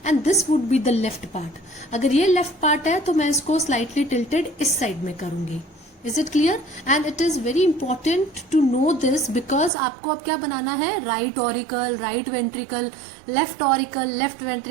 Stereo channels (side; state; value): left; drops out; at 9.7 s